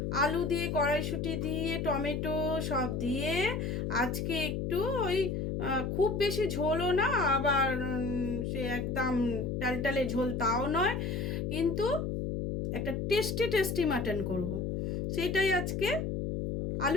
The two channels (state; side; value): noise; left; hum, 1 dB below the sound